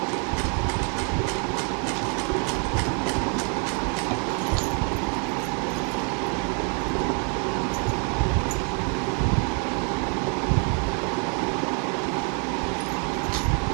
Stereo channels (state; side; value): quieter; left; 39.1 dB